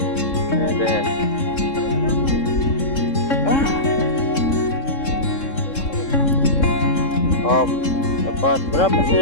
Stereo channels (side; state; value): right; late; 3.7 ms